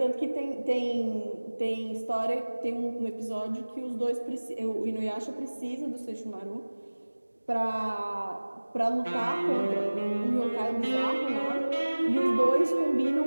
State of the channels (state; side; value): inverted; both; correlation -1.00